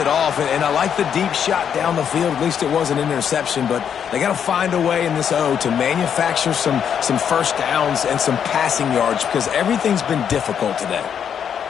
off. And I like the deep shot down the field. At least it was an interception, but they got to find a way in this O to manufacture some first downs and some passing yards because everything's been difficult today.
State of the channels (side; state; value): right; quieter; 8.1 dB